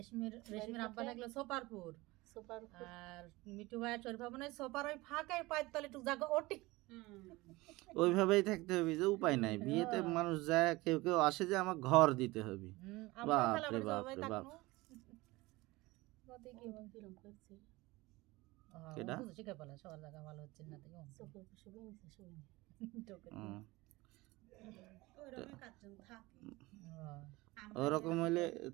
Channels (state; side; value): quieter; left; 21.1 dB